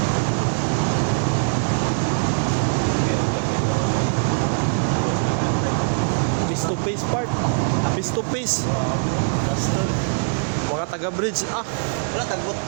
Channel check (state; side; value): silent; left; digital silence